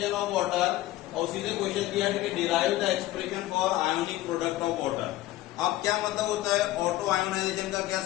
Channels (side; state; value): right; quieter; 16.1 dB